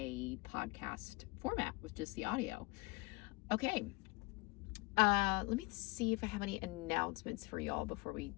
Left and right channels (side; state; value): right; quieter; 25.0 dB